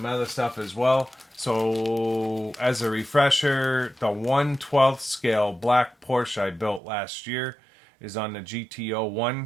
other stuff as well. So, as a refresher, the 1/12 scale black Porsche I built last year is on the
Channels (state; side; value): drops out; left; at 6.8 s